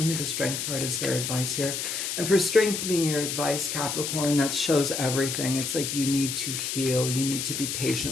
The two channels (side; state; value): left; noise; hiss, 3 dB below the sound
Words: the Strength card as their advice here. And for Strength being your advice, Capricorn, that shows everything. It's like you need to heal. You need to be